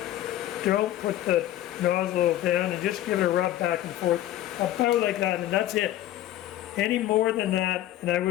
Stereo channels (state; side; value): quieter; right; 13.5 dB